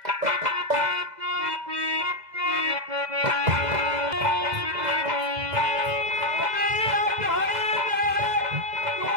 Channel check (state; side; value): late; left; 2.0 ms